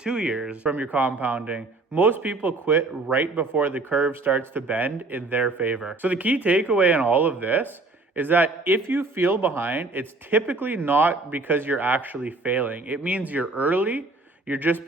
years from your compounding. Most people quit right before the curve starts to bend in their favor. So the key takeaway in all of this is that if you feel behind, it's typically not because you're actually failing. It means you're early, you're just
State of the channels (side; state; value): left; quieter; 3.3 dB